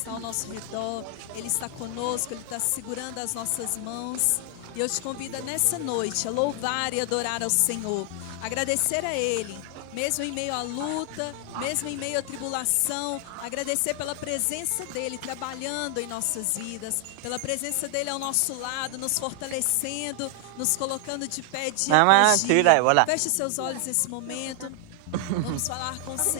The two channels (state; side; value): different; both; correlation 0.00